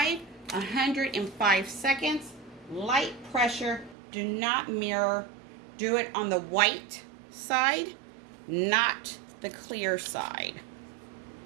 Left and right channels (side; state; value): left; drops out; at 4.0 s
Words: 105 seconds, light pressure. Do not mirror. Do it on the white side, not the clear side.